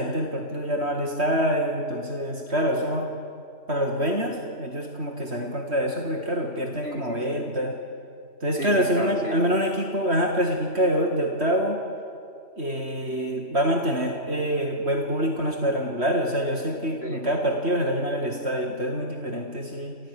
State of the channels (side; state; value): left; late; 3.1 ms